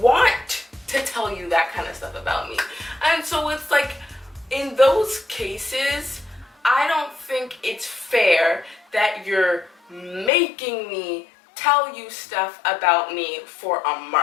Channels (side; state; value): right; drops out; at 10.3 s